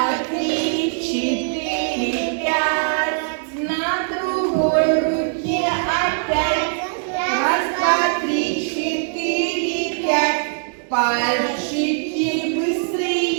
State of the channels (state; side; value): silent; left; digital silence